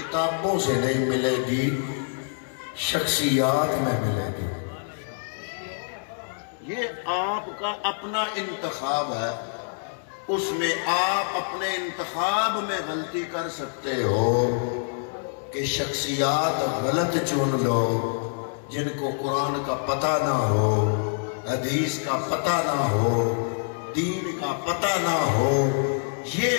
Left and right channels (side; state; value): right; silent; digital silence